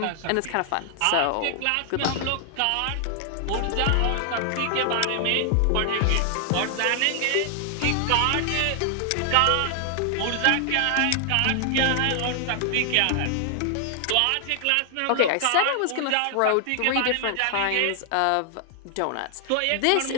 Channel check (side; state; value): both; different; correlation 0.00